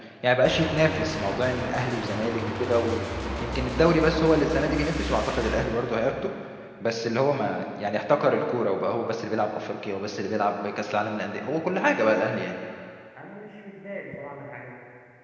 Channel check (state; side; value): identical; both; correlation 1.00